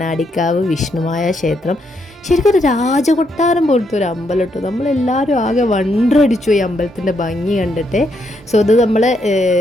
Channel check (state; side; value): normal; both; correlation 0.77